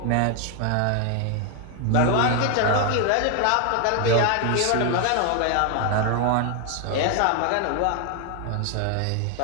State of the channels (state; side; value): different; both; correlation 0.00